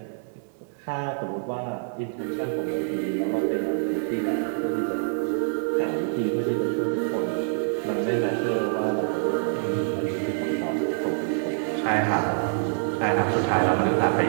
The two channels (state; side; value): silent; left; digital silence